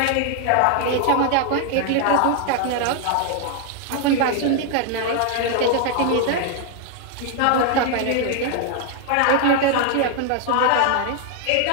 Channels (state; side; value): different; both; correlation 0.00